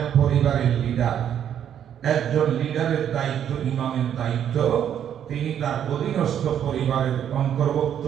পরিবারের লিডার, একজন লিডারের দায়িত্ব, ইমামের দায়িত্ব, তিনি তার অধীনস্থ পরিবারের অন্তর্ভুক্ত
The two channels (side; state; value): left; quieter; 9.5 dB